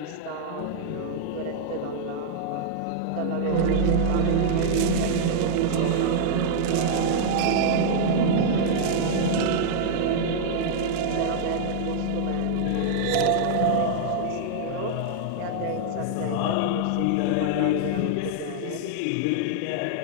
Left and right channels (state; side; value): different; both; correlation -0.01